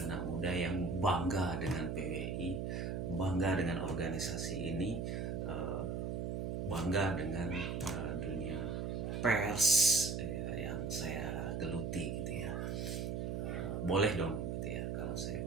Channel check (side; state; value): right; noise; hum, 2 dB below the sound